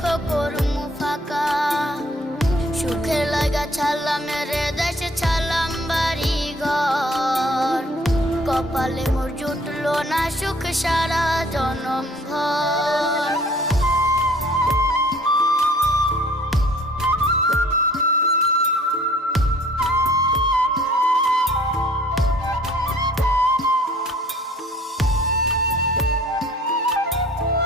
করমু ফাঁকা। সুখের লাগা ছাড়লাম রে দেশে, ছাড়লাম বাড়ি ঘর, কপালে মোর জুটলো না সুখ সারা জনম ভর।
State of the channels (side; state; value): both; normal; correlation 0.55